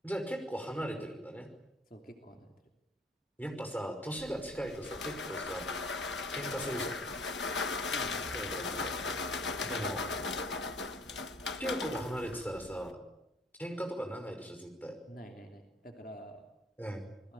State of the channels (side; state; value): both; normal; correlation 0.55